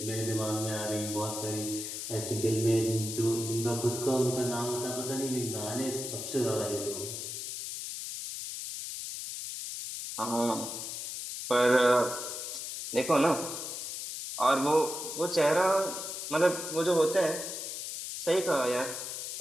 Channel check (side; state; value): left; noise; hiss, 6 dB below the sound